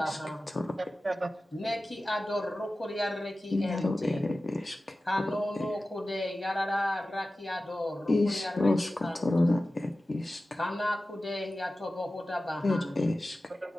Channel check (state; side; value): normal; both; correlation 0.95